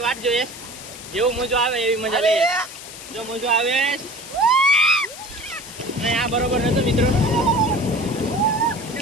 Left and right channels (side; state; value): left; noise; hiss, 14 dB below the sound